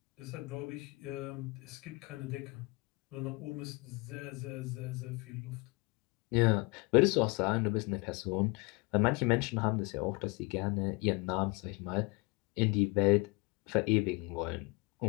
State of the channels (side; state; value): right; quieter; 27.4 dB